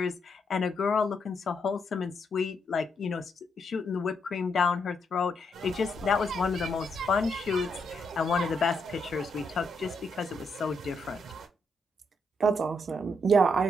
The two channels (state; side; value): normal; both; correlation 0.78